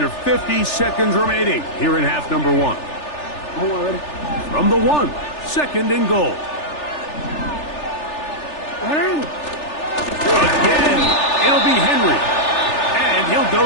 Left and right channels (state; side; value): late; right; 3.4 ms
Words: 50 seconds remaining here in half number one. From the 1, second and goal. Again, it'll be Henry. And he'll